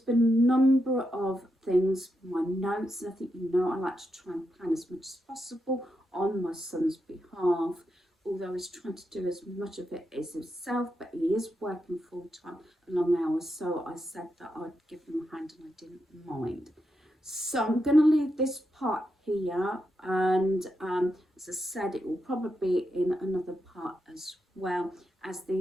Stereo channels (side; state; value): both; normal; correlation 0.85